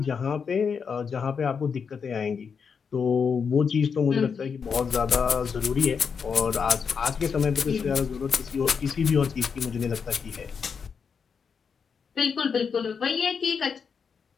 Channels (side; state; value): right; quieter; 6.2 dB